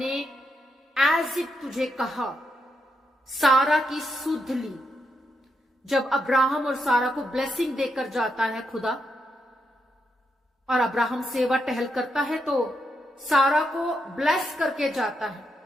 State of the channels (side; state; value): both; normal; correlation 0.82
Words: एज इट तुझे कहा, सारा की सुध ली। जब अब्राहम और सारा को ब्लेसिंग देकर जाता है खुदा, और अब्राहम सेवा टहल करता है, तो सारा को ब्लेस करके जाता है